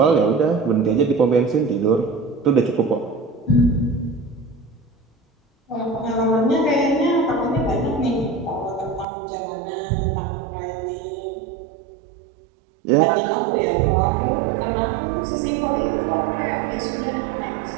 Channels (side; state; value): left; drops out; at 9.1 s